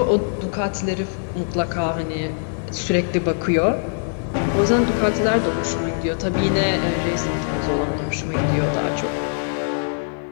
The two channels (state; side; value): silent; right; 64 dB below the other